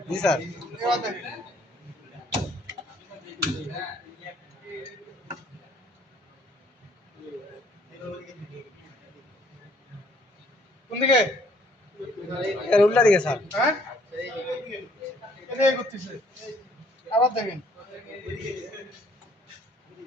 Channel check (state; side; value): normal; both; correlation 0.63